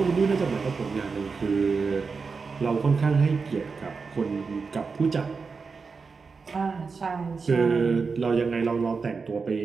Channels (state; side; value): quieter; left; 4.9 dB